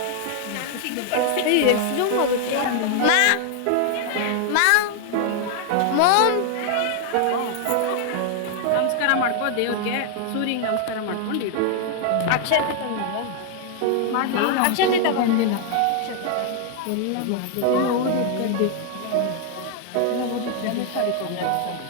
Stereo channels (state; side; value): different; both; correlation 0.00